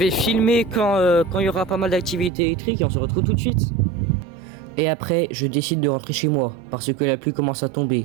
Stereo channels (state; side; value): drops out; left; at 2.3 s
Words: filmer quand il y aura pas mal d'activités électriques et on se retrouve tout de suite. Et après, je décide de rentrer chez moi parce que la pluie commence à